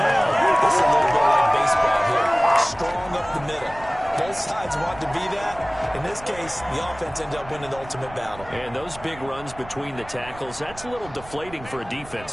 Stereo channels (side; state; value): right; noise; rumble, 18 dB below the sound